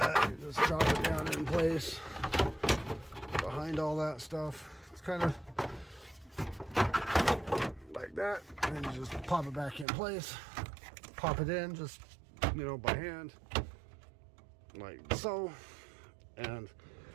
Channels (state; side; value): drops out; left; at 9.9 s